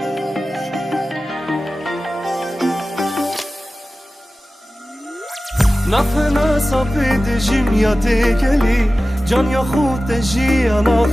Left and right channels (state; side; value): normal; both; correlation 0.95